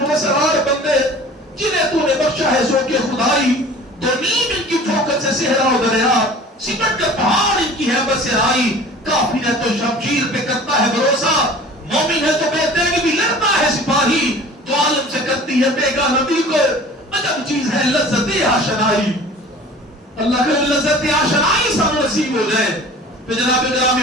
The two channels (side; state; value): both; normal; correlation 0.44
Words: بندے جنہیں تو نے بخشا ہے سو کے خدائی، دو نیم ان کی ٹھوکر سے صحرا و دریا، سمٹ کر پہاڑ ان کی حیبت سے آئی، کافر ہے تو شمشیر پہ کرتا ہے بھروسہ، مومن ہے تو بے تیغ بھی لڑتا ہے سپاہی، تو عالم سے کرتی ہے بیگا نبی کو، عجب چیز ہے لذت آشنائی۔ اللہ کے لذت آشنائی سب نصیب ہو جائے۔ تو جناب